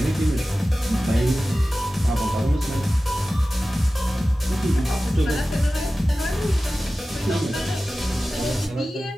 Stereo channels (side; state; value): both; normal; correlation 0.95